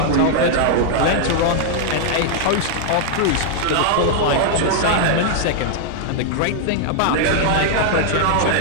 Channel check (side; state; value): both; different; correlation -0.01